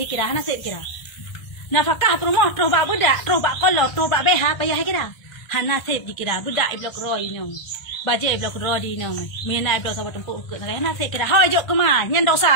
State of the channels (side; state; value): right; late; 1.6 ms